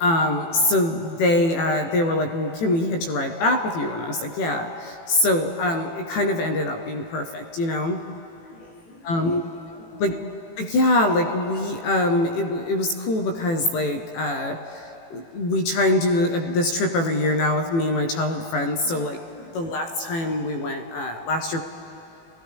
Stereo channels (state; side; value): late; right; 18 ms